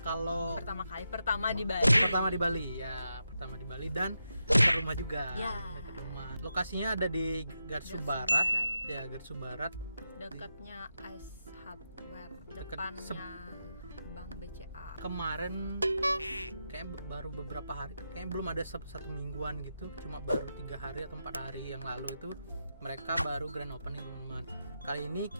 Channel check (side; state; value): both; inverted; correlation -0.87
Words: Pertama di Bali. Pertama di Bali ya, pertama di Bali dan dekat rumah juga. Ya. Dekat rumah. Lokasinya ada di Garsu Barat. Ya, Garsu Barat. Dekatnya Ice Hardware, Deket depannya Bank BCA. Kemarin kayak baru beberapa hari, kayaknya belum ada satu mingguan gitu, cuma baru 3 hari atau 4 hari yang lalu itu mereka baru grand opening teman-teman. Kali ini